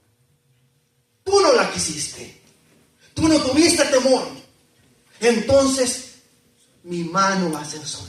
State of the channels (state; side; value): identical; both; correlation 1.00